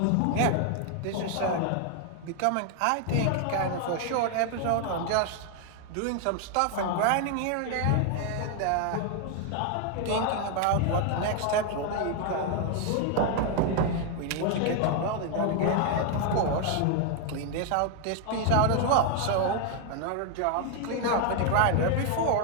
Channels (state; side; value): different; both; correlation 0.01